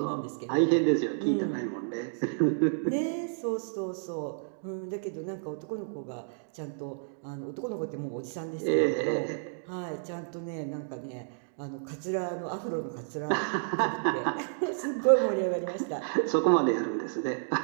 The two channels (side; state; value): left; silent; digital silence